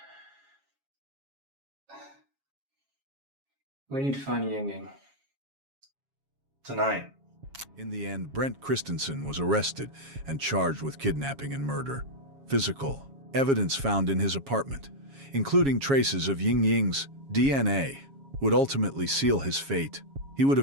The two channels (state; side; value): late; left; 7.3 ms